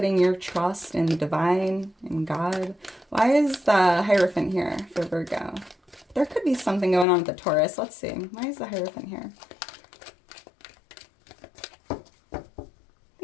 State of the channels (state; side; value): drops out; right; at 7.1 s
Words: your trust in the divine, in God. Why is the Hierophant here for Virgo? There could be something going on with the Taurus. Let's see. Why is the Hierophant here?